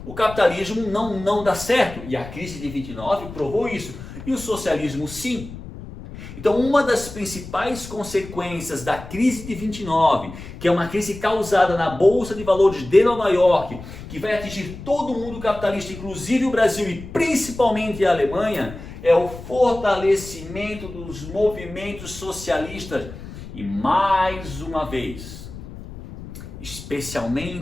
O capitalismo não dá certo, e a crise de 29 provou isso, e o socialismo sim. Então, uma das principais consequências da crise de 29, que é uma crise causada na Bolsa de Valores de Nova York, que vai atingir todo o mundo capitalista, inclusive o Brasil e principalmente a Alemanha, é o fortalecimento dos movimentos socialistas. E mais uma vez,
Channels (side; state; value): left; noise; rumble, 13 dB below the sound